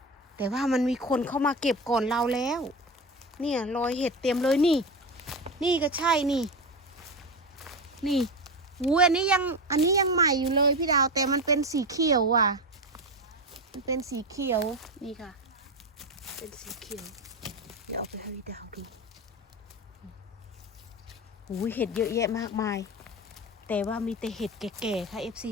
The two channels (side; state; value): both; normal; correlation 0.20